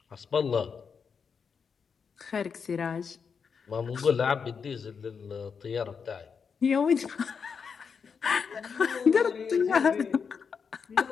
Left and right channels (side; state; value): right; quieter; 6.1 dB